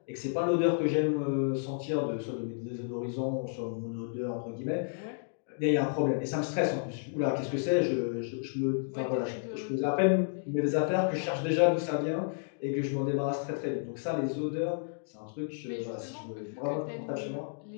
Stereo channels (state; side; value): silent; right; digital silence